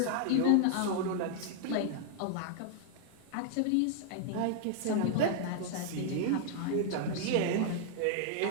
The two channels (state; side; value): different; both; correlation -0.01